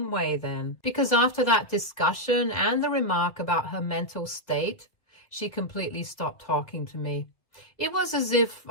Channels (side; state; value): right; late; 1.7 ms